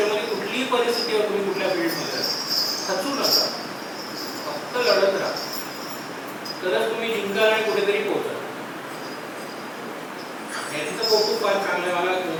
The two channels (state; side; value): identical; both; correlation 1.00